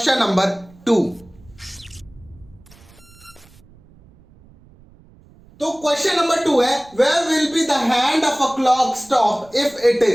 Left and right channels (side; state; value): right; noise; rumble, 26 dB below the sound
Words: नंबर 2। तो क्वेश्चन नंबर 2 है, where will be the hand of a clock stop if it